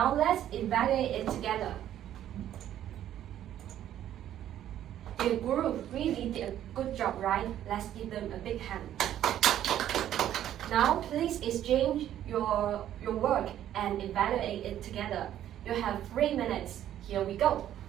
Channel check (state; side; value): quieter; left; 11.5 dB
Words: let's evaluate it together. The group really did a good job, right? Let's give them a big hand. Now please exchange your work and evaluate it together. You have 3 minutes. Here we go.